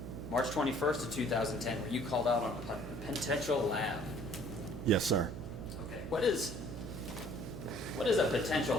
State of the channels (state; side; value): noise; right; hum, 9 dB below the sound